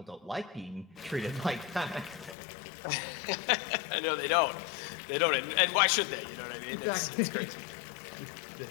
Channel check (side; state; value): right; drops out; at 2.4 s